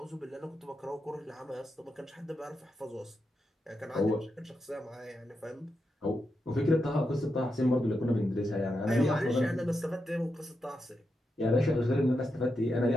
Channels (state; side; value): normal; both; correlation 0.86